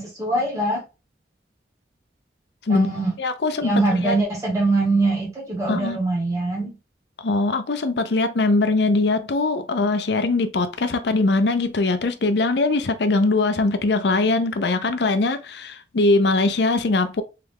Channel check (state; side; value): normal; both; correlation 0.43